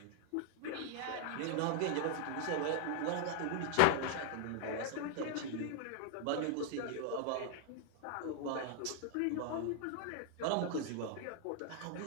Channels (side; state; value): both; different; correlation 0.00